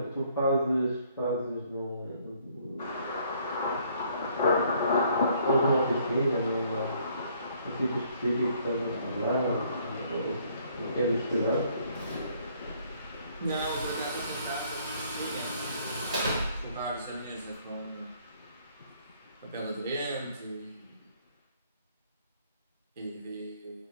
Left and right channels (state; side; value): inverted; both; correlation -0.64